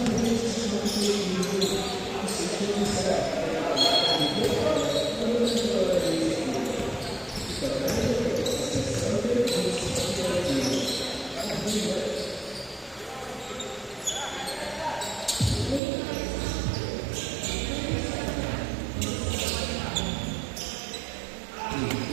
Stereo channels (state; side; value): drops out; left; at 15.8 s